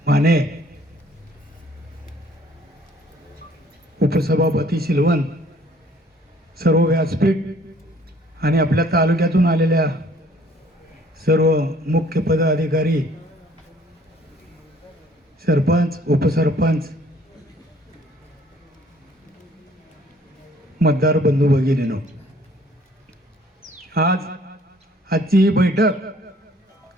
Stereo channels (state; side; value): normal; both; correlation 0.58